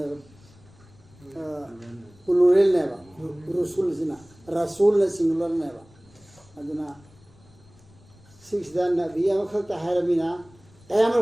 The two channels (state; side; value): noise; left; rumble, 27 dB below the sound